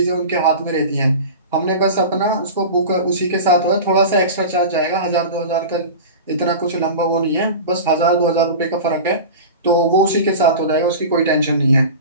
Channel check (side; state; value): both; inverted; correlation -0.32